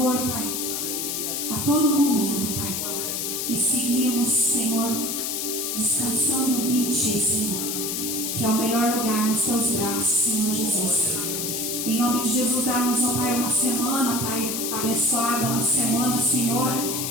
Pai, a todo momento, Pai, e seguirmos, Senhor, descansando em Ti, Senhor, que é o melhor lugar nos Teus braços, Senhor Jesus. Em nome de Jesus, dá-nos, ó Pai, uma semana, Pai, abençoada, uma semana, Senhor,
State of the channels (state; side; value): noise; left; hiss, 2 dB below the sound